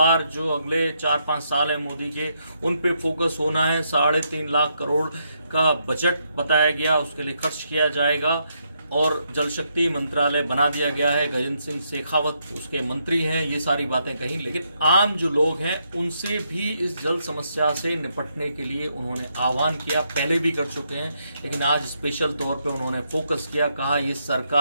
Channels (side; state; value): both; inverted; correlation -0.78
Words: जो अगले 4-5 साल है मोदी के, उन पे फोकस होना है। 3.5 लाख करोड़ का बजट बताया गया, उसके लिए खर्च किया जाएगा और जल शक्ति मंत्रालय बना दिया गया है। गजेंद्र सिंह शेखावत उसके मंत्री हैं। ये सारी बातें कहीं, लेकिन आम जो लोग हैं उनसे भी इस जल समस्या से निपटने के लिए उन्होंने आह्वान किया। पहले भी कर चुके हैं, लेकिन आज स्पेशल तौर पे उन्होंने फोकस किया। कहा ये